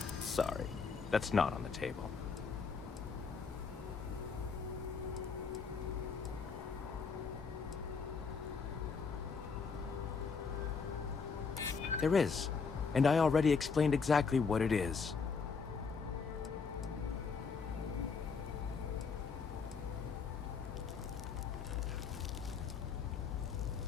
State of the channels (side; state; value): right; quieter; 5.3 dB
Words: Sorry, that's not on the table. There is, and I already explained exactly what it is.